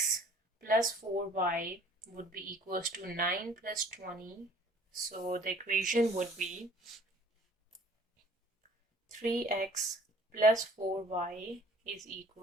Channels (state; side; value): normal; both; correlation 0.54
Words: plus 4y would be equals to 9 plus 20. So the equation would be 3x plus 4y is